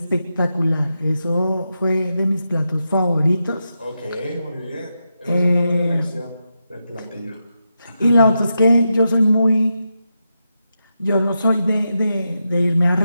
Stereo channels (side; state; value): both; inverted; correlation -0.87